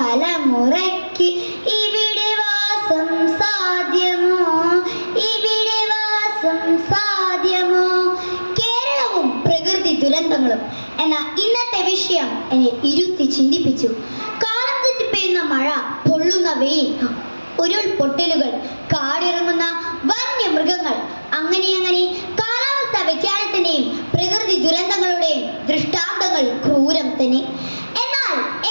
ഇവിടെ വാസം സാധ്യമോ, ഇവിടെ വാസം സാധ്യമോ. കേരളവും പ്രകൃതി ദുരന്തങ്ങളും എന്ന ഇന്നത്തെ വിഷയം എന്നെ ഇരുത്തി ചിന്തിപ്പിച്ചു. കാലം തെറ്റി പെയ്യുന്ന മഴ, പൊള്ളുന്ന വെയിൽ, ഉരുൾപൊട്ടലുകൾ, കാടിറങ്ങുന്ന വന്യമൃഗങ്ങൾ, അങ്ങനെ കാലാവസ്ഥാ വ്യതിയാനത്തിന്റെയും പ്രകൃതി ദുരന്തങ്ങളുടെയും ദൃഷ്ടാന്തങ്ങൾ ക്രൂരം തന്നെ. എന്നാൽ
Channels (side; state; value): both; inverted; correlation -1.00